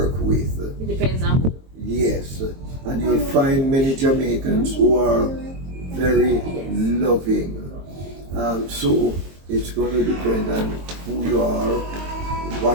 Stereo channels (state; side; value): late; left; 22 ms